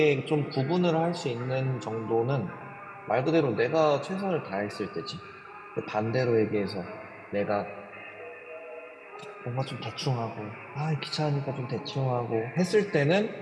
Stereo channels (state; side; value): identical; both; correlation 1.00